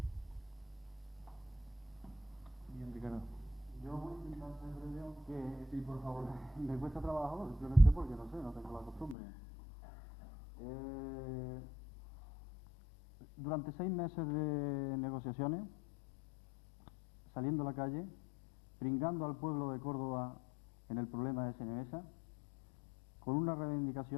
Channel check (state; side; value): drops out; right; at 9.2 s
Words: Bien, Ricardo. Yo voy a intentar ser breve, aunque sí, por favor, me cuesta trabajo, simplemente porque no sé, no tengo la costumbre. Durante 6 meses de negociaciones, saliendo a la calle, pringando al pueblo de Córdoba en el problema de SNMesa, con unas